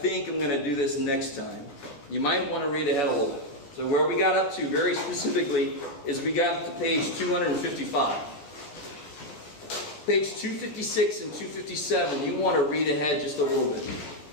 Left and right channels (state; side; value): late; right; 14 ms